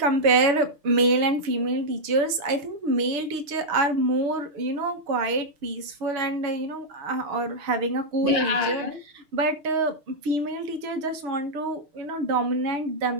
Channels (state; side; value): late; left; 6.5 ms